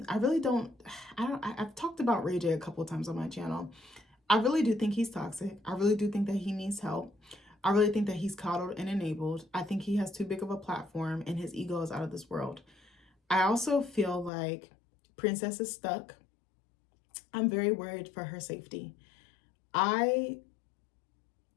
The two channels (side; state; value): right; drops out; at 14.3 s